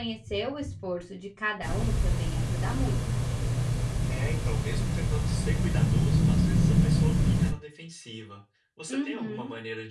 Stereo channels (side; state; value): both; identical; correlation 1.00